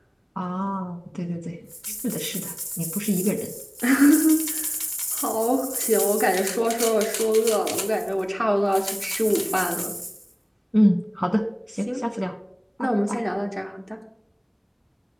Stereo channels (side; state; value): both; identical; correlation 1.00